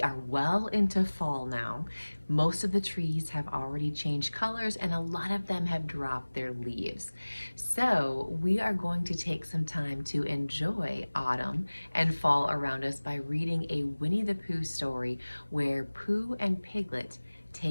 well into fall now. Most of the trees have already changed colors and a lot of them have dropped their leaves. So we are going to take some time to enjoy autumn and fall around us by reading a Winnie the Pooh story where Pooh and Piglet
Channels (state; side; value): inverted; both; correlation -1.00